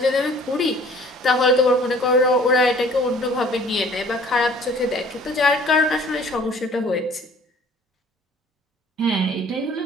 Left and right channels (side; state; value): both; normal; correlation 0.52